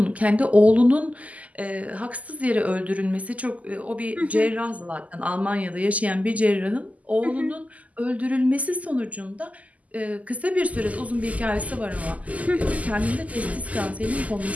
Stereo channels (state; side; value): late; left; 0.073 ms